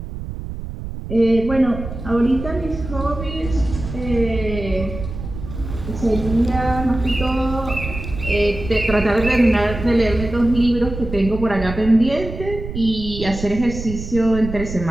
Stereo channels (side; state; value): right; noise; rumble, 9 dB below the sound